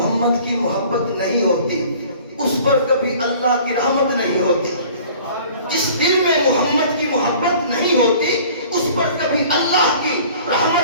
کی محبت نہیں ہوتی اس پر کبھی اللہ کی رحمت نہیں ہوتی، جس دل میں محمد کی محبت نہیں ہوتی اس پر کبھی اللہ کی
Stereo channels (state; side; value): inverted; both; correlation -0.49